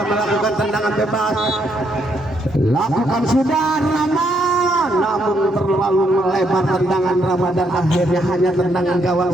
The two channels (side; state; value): both; normal; correlation 0.74